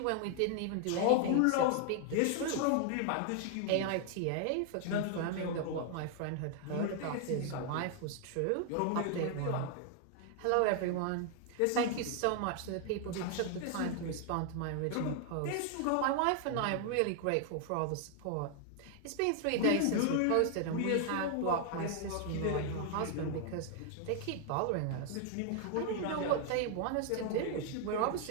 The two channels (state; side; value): different; both; correlation 0.00